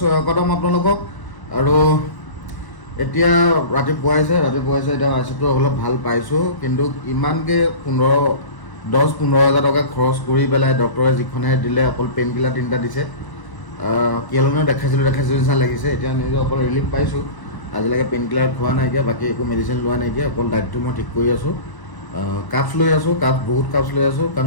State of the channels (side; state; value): right; late; 1.0 ms